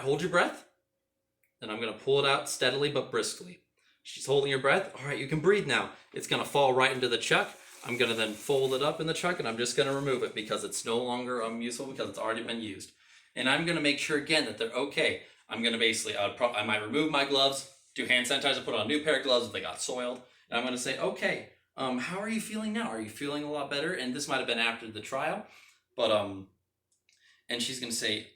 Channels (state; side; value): identical; both; correlation 1.00